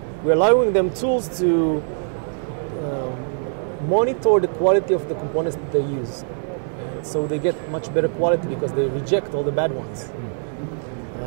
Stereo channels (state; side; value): silent; left; digital silence